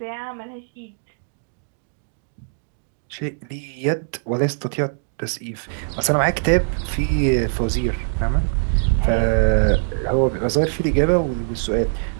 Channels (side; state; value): left; silent; digital silence